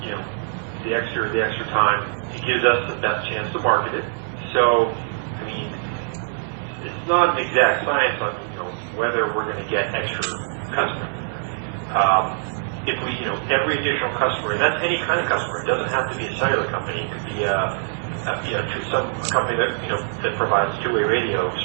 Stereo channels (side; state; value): left; silent; 57 dB below the other